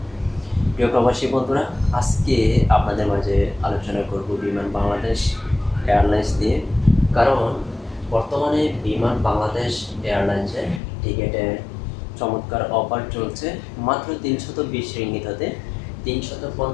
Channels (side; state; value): right; drops out; at 10.8 s